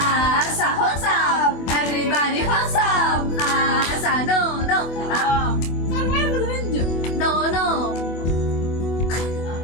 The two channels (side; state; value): right; late; 24 ms